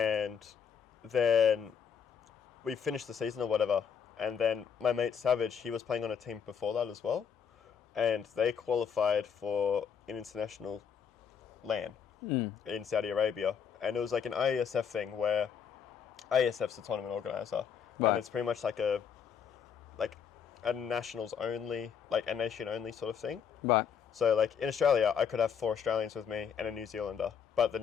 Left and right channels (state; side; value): quieter; right; 7.4 dB